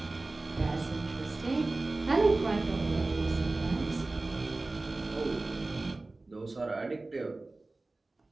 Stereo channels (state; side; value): quieter; left; 3.2 dB